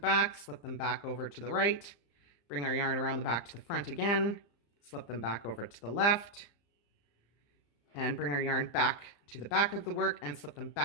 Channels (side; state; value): right; late; 35 ms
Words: slip them back over to the right, bring our yarn around the back to the front again, slip them back over to the left, and bring our yarn back to the back of the work and slip them